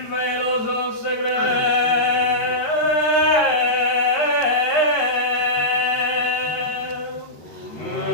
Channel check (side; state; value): right; late; 13 ms